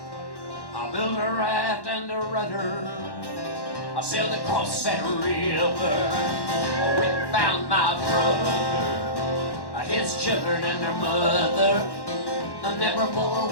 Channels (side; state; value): right; late; 1.1 ms